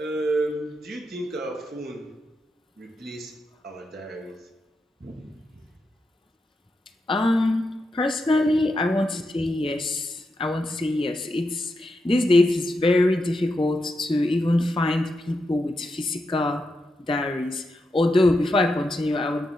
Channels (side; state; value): both; normal; correlation 0.86